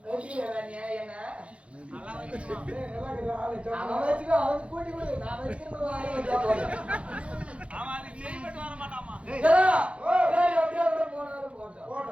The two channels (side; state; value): left; late; 0.061 ms